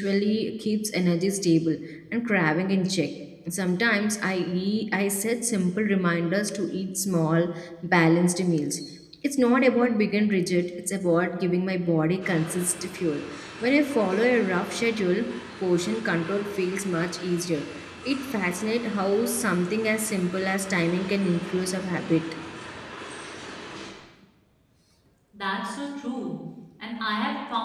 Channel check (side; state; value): both; identical; correlation 1.00